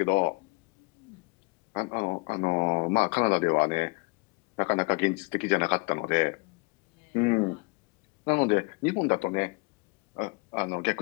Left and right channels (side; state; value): right; quieter; 29.2 dB